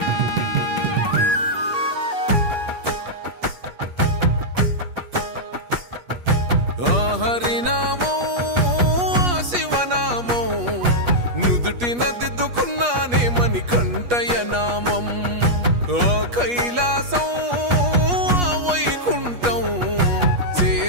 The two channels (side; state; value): left; late; 8.3 ms